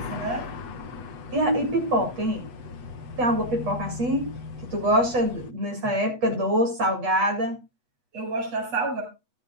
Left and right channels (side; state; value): left; late; 8.2 ms